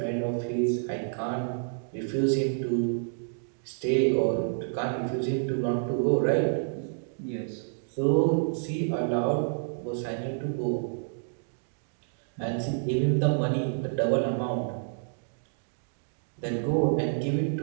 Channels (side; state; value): left; silent; digital silence